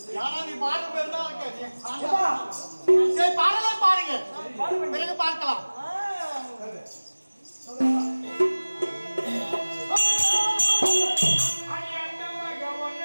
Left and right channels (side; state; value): both; inverted; correlation -1.00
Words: யாரா நீ பாரு பேர் தான் சரி பாடலே பாருங்க பிறகு பார்க்கலாம்